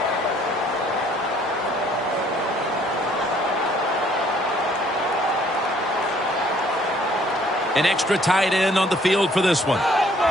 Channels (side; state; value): both; normal; correlation 0.61